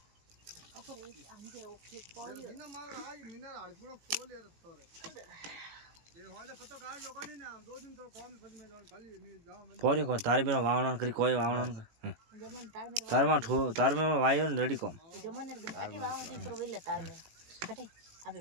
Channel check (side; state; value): left; late; 18 ms